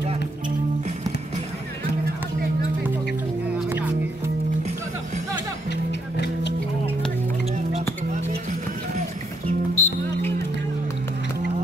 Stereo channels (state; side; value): normal; both; correlation 0.75